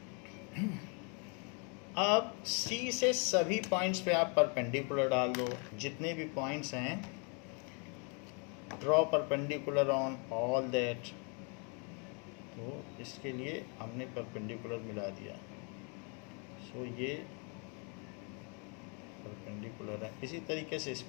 अब सी से सभी पॉइंट्स पे आप परपेंडिकुलर डाल दो, जितने भी पॉइंट्स हैं, draw perpendicular on all that. तो इसके लिए हमने परपेंडिकुलर मिला दिया, सो ये परपेंडिकुलर है। इसी तरीके से इस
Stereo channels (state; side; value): quieter; right; 35.8 dB